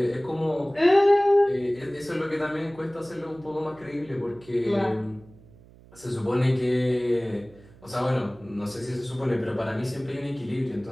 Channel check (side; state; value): right; noise; hum, 24 dB below the sound